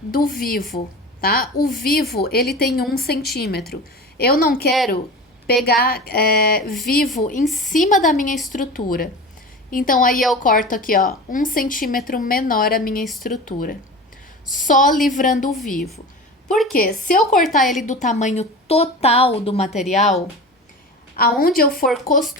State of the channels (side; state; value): both; normal; correlation 0.33